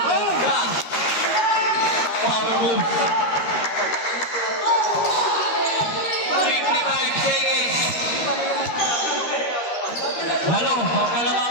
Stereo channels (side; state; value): right; late; 13 ms